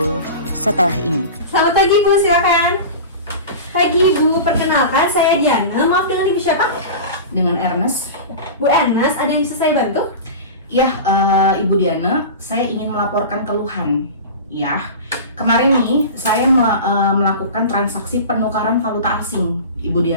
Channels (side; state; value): both; inverted; correlation -0.31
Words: setelah ini. Selamat pagi Bu, silakan. Pagi Bu, perkenalkan saya Diana. Maaf, dengan Ibu siapa? Dengan Ernest. Bu Ernest, ada yang bisa saya bantu? Ya, Ibu Diana, saya ingin melaporkan keluhan. Ya, kemarin nih saya melakukan transaksi penukaran valuta asing, Ibu